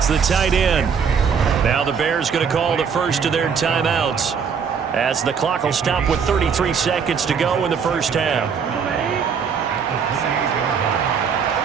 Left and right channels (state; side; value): quieter; left; 6.6 dB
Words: the tight end. Now the Bears going to call the first of their timeouts as the clock will stop with 33 seconds to go in the first half.